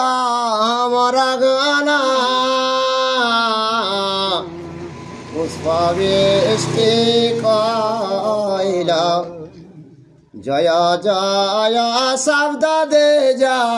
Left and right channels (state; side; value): identical; both; correlation 1.00